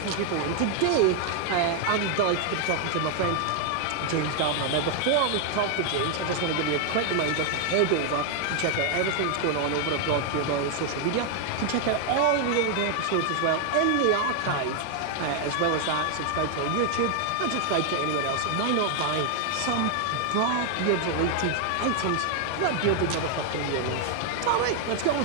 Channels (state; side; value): different; both; correlation 0.00